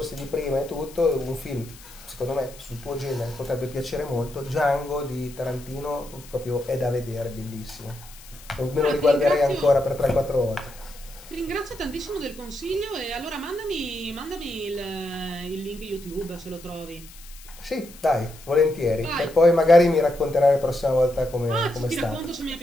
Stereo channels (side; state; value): left; noise; hiss, 20 dB below the sound